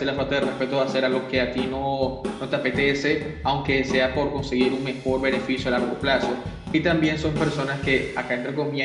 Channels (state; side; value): identical; both; correlation 1.00